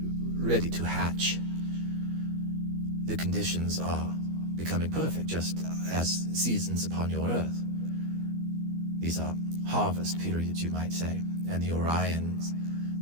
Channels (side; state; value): left; late; 12 ms